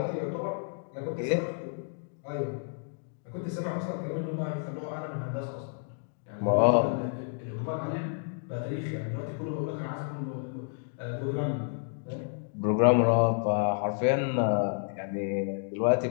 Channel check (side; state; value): right; silent; digital silence